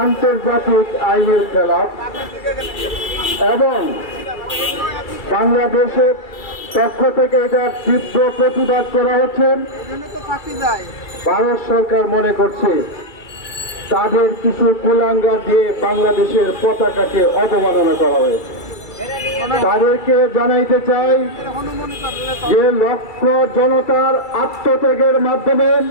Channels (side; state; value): right; late; 2.3 ms